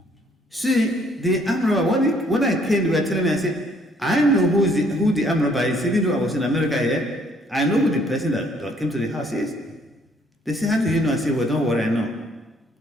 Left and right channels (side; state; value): both; normal; correlation 0.64